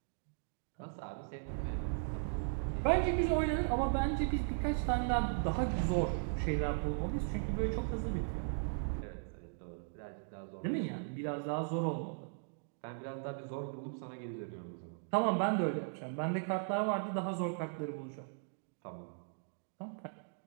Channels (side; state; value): left; silent; digital silence